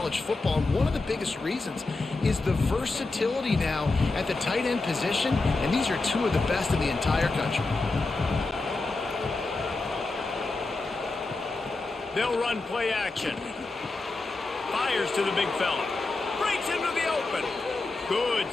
football, and one of the biggest reasons is the versatility now at the tight end position, and these are two of the best in the entire country. They'll run play action. Fires to the big fella. Breaks into the open. Good,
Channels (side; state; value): right; quieter; 3.4 dB